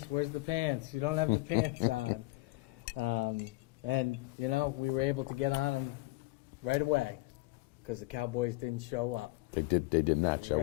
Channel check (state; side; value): quieter; right; 21.5 dB